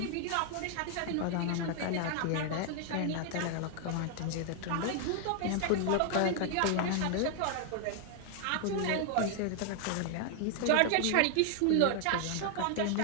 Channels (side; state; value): both; different; correlation 0.00